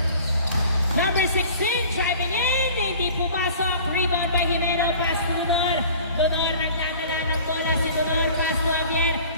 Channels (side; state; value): both; inverted; correlation -0.46